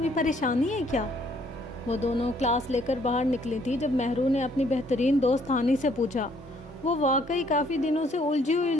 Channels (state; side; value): normal; both; correlation 0.65